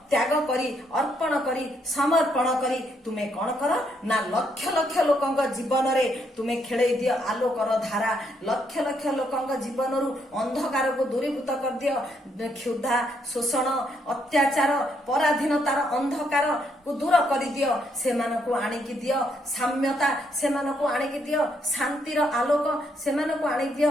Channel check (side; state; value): both; normal; correlation 0.74